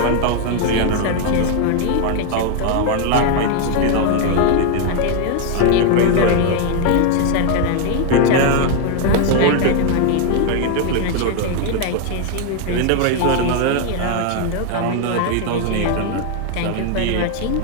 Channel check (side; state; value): both; different; correlation 0.00